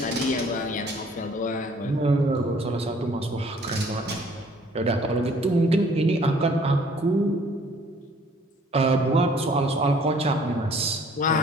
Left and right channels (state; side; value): normal; both; correlation 0.57